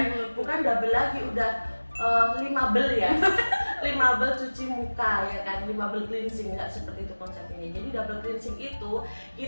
Bukan double lagi, udah 5 bel ya. 5 bel cuci muka ya kan, 5 bel cleansing, nggak seperti itu konsepnya. Jadi double cleansing itu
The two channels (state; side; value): inverted; both; correlation -1.00